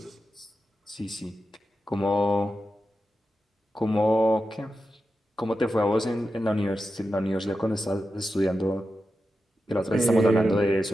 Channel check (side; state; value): both; normal; correlation 0.90